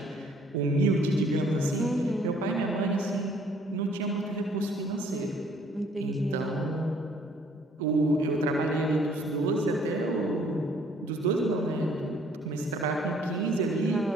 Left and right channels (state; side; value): normal; both; correlation 0.60